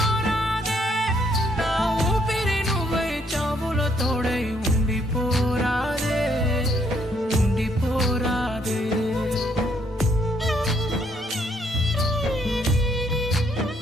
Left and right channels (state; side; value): normal; both; correlation 0.70